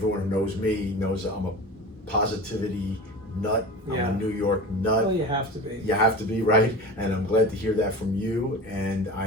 who knows me knows that I'm a positivity nut. Yeah. I'm a New York nut. Well, you have to be. You have to be, right? And I'm glad to hear that from you. And I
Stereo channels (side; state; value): both; normal; correlation 0.33